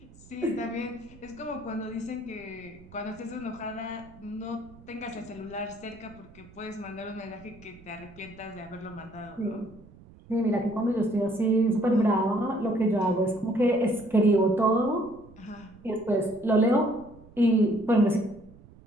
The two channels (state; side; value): noise; right; rumble, 22 dB below the sound